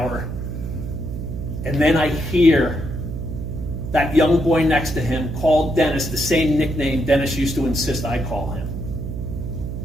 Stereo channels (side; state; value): right; noise; hum, 5 dB below the sound